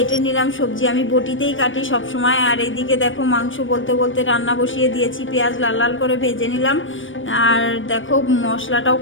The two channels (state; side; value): late; right; 0.56 ms